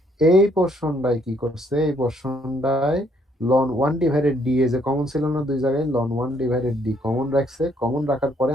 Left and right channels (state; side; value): normal; both; correlation 0.68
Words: এই পোর্শনটাই কি করছে, এই পোর্শনটায় ln one divided D A যে কমন ছিল না দুই জায়গায়, ln one divided D common রাখছে। কমন রাখার পরে